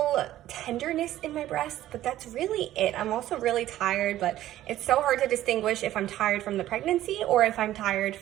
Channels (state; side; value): quieter; left; 13.7 dB